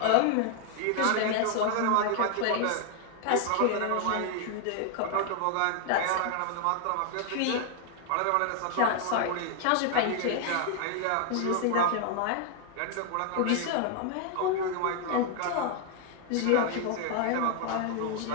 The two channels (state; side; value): different; both; correlation 0.00